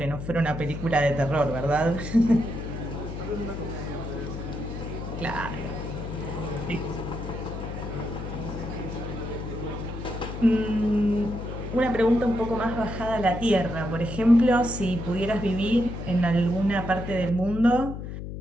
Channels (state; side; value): noise; left; hum, 7 dB below the sound